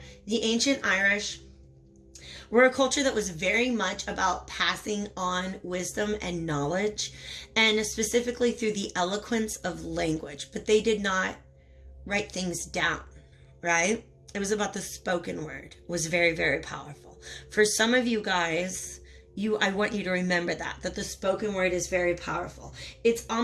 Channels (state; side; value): identical; both; correlation 1.00